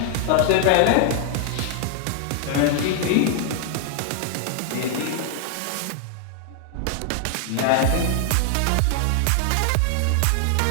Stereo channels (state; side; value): different; both; correlation 0.00